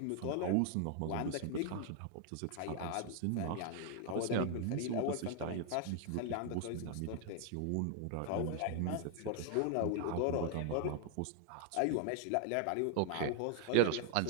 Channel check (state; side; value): different; both; correlation 0.00